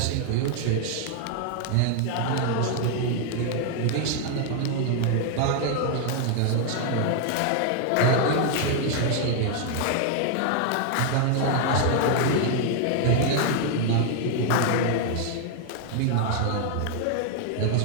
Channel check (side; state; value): both; different; correlation 0.00